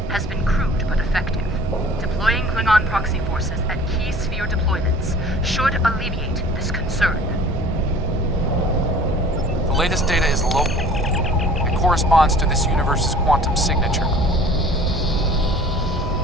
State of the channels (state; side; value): normal; both; correlation 0.47